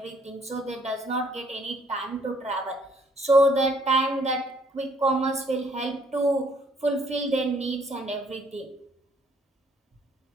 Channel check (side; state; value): both; normal; correlation 0.64